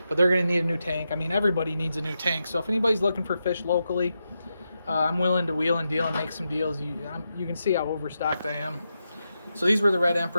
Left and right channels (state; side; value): inverted; both; correlation -0.87